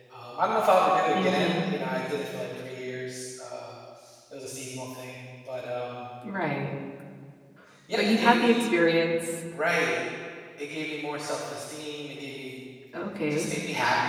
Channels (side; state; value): both; identical; correlation 1.00